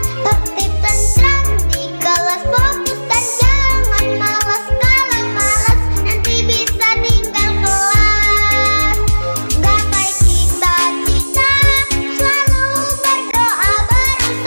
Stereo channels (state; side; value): inverted; both; correlation -1.00